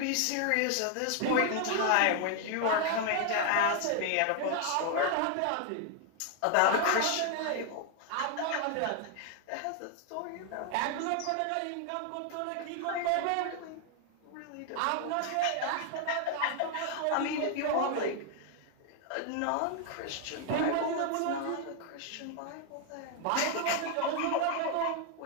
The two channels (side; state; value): both; different; correlation 0.00